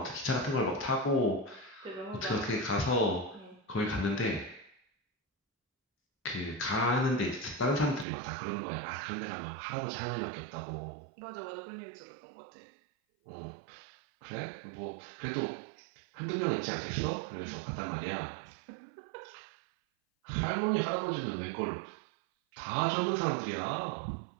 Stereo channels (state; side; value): drops out; left; at 8.1 s